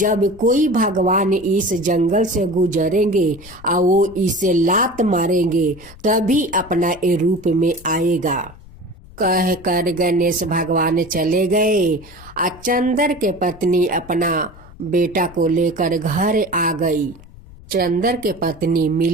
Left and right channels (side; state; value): left; noise; rumble, 20 dB below the sound